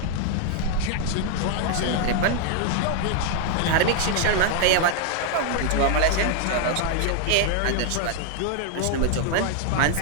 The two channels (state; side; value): different; both; correlation 0.00